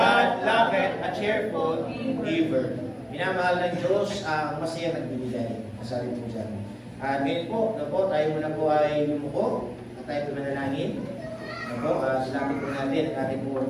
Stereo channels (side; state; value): both; identical; correlation 1.00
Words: loveth a cheerful giver. Minamahal ng Diyos ang masaya nagbibigay. Masabi po dyan. At ngayon po, tayo muna po ay lumuko at tayo po manalangin. Salamat po natin ang